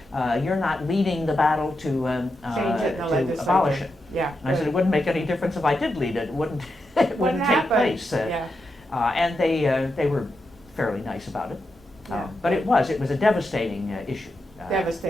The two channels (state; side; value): normal; both; correlation 0.86